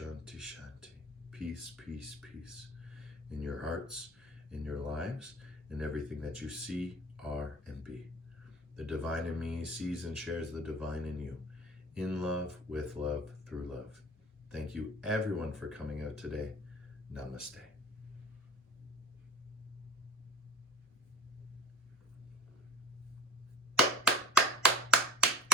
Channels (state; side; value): normal; both; correlation 0.45